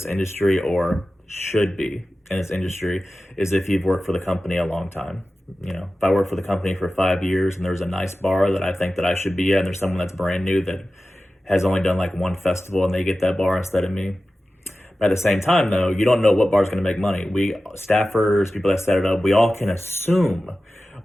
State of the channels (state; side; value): normal; both; correlation 0.95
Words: industry, or should be in this industry, is if you've worked for the company a long time. You know, if I work for the company for 5 years and there's a nice bar that I think that I should be at, and there's someone that's brand new that has only done like one festival and they get that bar instead of me. But at the same time, though, you don't know what bar is going to make money. We staffers, people that set it up, we all can assume